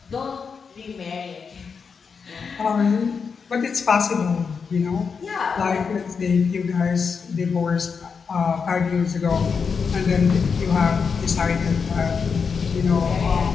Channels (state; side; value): quieter; right; 5.7 dB